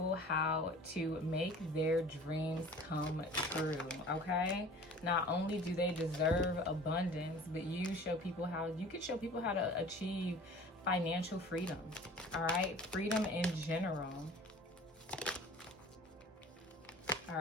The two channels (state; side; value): normal; both; correlation 0.44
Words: how to make their dreams come true, okay? Not only do they deserve abundance, but you show people how, you can show people how to achieve financial freedom, all right? Freedom in general. All